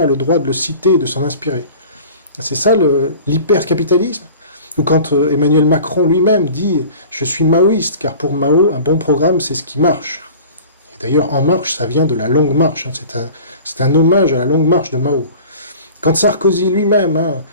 a le droit de le citer et de s'en inspirer. » C'est ça l'hypercapitalisme. Ou quand Emmanuel Macron lui-même dit « Je suis maoïste, car pour Mao, un bon programme, c'est ce qui marche. » Et d'ailleurs, En Marche, ça vient de la Longue Marche, c'est un hommage à la Longue Marche de Mao. Quand Sarkozy lui-même,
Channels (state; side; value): inverted; both; correlation -0.43